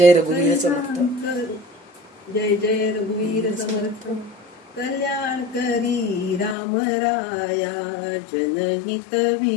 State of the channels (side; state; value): right; drops out; at 6.6 s